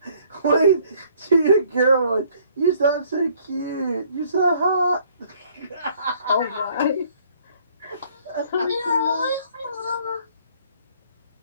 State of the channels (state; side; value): inverted; both; correlation -0.61